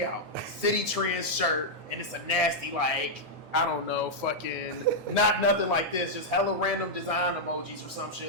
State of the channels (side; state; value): both; normal; correlation -0.05